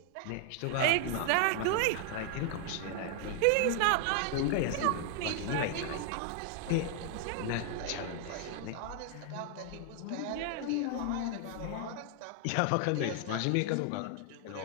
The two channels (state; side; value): different; both; correlation 0.00